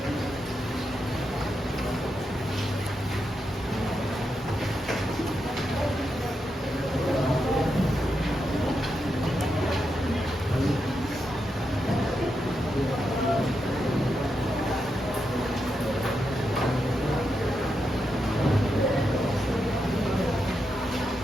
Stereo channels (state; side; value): normal; both; correlation 0.85